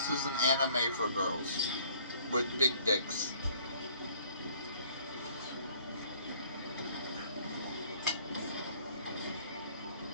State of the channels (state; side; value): inverted; both; correlation -0.57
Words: is an anime for girls with big dicks.